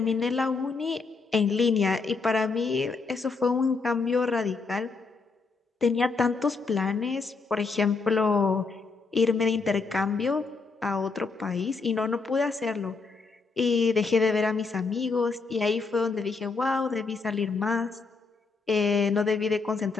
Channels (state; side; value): quieter; right; 4.3 dB